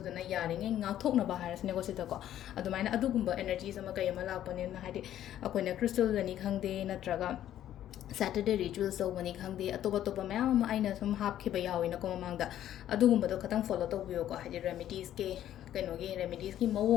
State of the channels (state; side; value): quieter; right; 11.8 dB